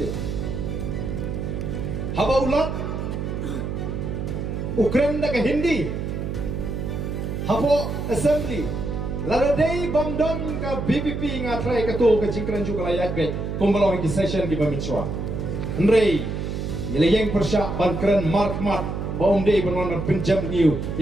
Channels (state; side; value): noise; right; hum, 4 dB below the sound